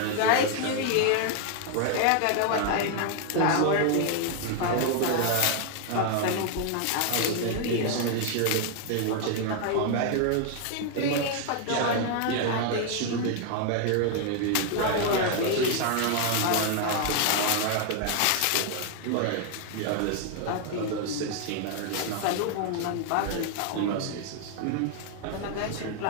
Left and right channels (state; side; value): different; both; correlation 0.00